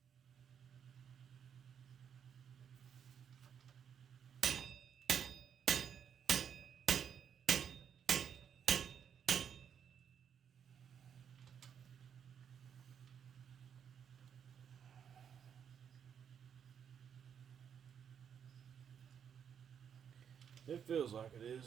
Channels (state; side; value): quieter; left; 7.9 dB